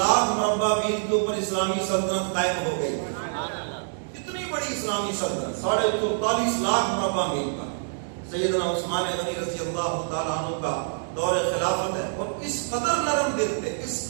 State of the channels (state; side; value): silent; left; digital silence